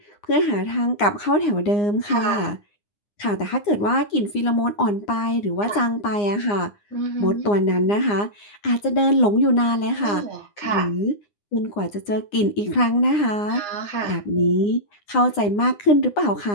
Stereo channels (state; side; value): late; right; 9.8 ms